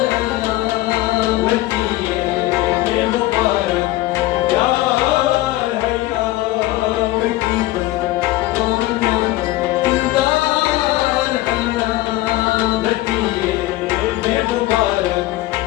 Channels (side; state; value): right; quieter; 17.2 dB